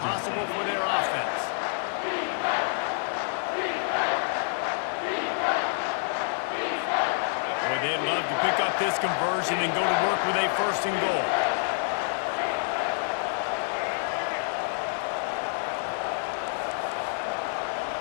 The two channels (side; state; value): right; silent; digital silence